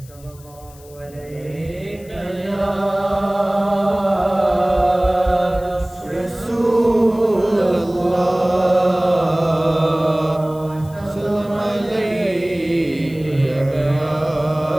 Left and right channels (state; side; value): noise; left; hiss, 24 dB below the sound